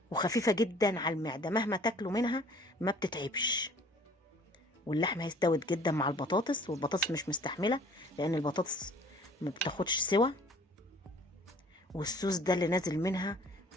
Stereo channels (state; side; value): normal; both; correlation 0.53